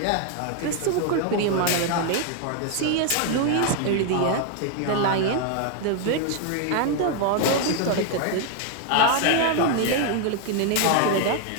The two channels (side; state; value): both; different; correlation 0.00